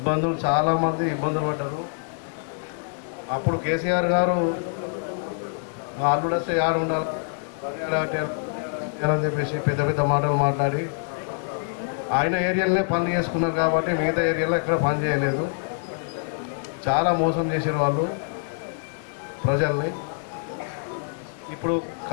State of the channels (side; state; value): right; silent; digital silence